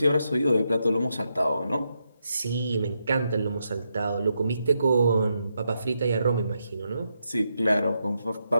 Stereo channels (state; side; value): inverted; both; correlation -0.83